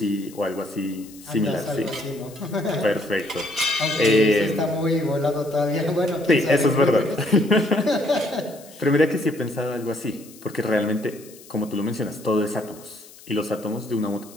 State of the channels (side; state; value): left; noise; hiss, 21 dB below the sound